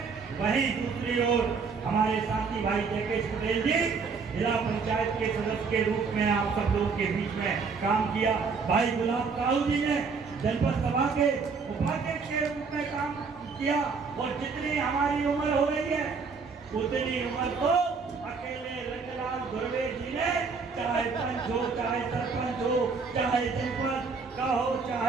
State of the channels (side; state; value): left; quieter; 5.0 dB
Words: वहीं दूसरी ओर हमारे साथी भाई जयकेश पटेल जी जिला पंचायत के सदस्य के रूप में आप सब लोगों के बीच में काम किया। भाई गुलाब काऊ जी ने जनपद सभा के उपाध्यक्ष के रूप में काम किया और जितनी हमारी उम्र हो रही है उतनी उम्र तो अकेले रंगलाल धुर्वे जी ने, चाहे पंच हो, चाहे सरपंच हो, चाहे जनपद का हो,